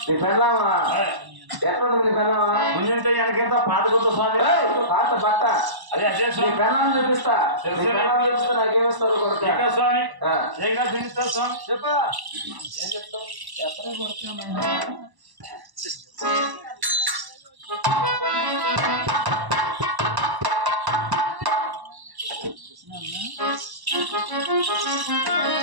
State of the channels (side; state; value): left; late; 1.1 ms